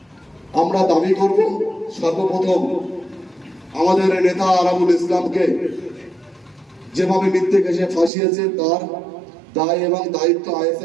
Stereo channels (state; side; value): drops out; left; at 8.1 s